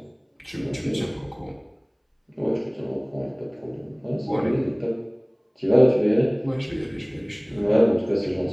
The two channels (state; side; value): identical; both; correlation 1.00